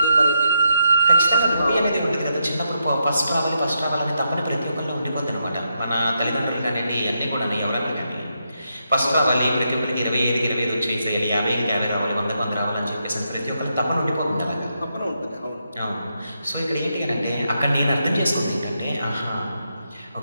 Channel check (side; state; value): both; inverted; correlation -0.81